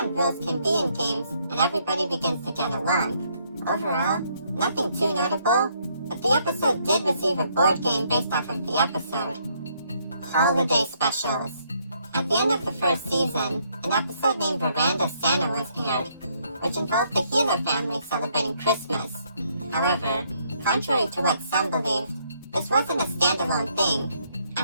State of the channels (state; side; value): inverted; both; correlation -0.70